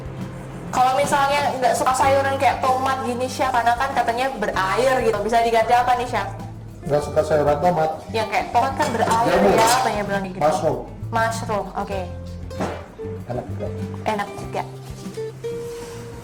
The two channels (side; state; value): both; identical; correlation 1.00